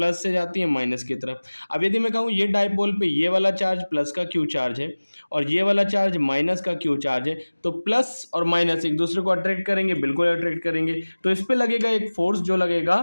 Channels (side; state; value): both; inverted; correlation -1.00